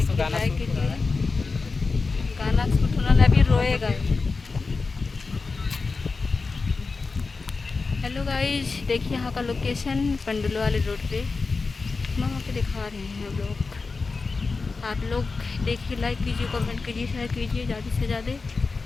गाना लाइक शूट हो रहा कीजिए। है। गाना शूट होने वाला, अभी रोएगा। हेलो गाइस, देखिए यहाँ का लोकेशन पंडुल वाले रोड पे वहाँ पे दिखा रहे हैं हम लोग। आप लोग देखिए, लाइक कीजिए, कमेंट कीजिए, शेयर कीजिए ज़्यादा से ज़्यादा।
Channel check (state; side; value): quieter; right; 4.2 dB